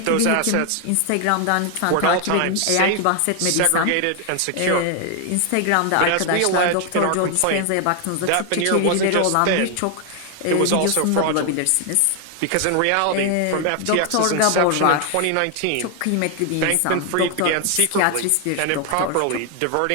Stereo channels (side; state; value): both; different; correlation 0.00